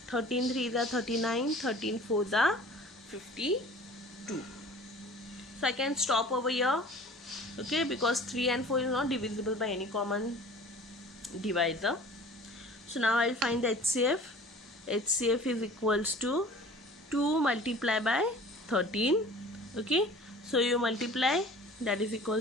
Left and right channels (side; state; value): both; normal; correlation 0.45